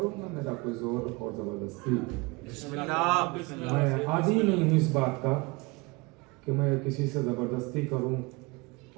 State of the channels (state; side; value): quieter; left; 25.3 dB